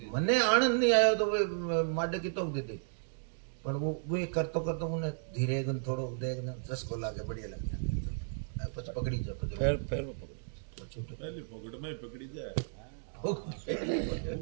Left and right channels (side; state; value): left; silent; digital silence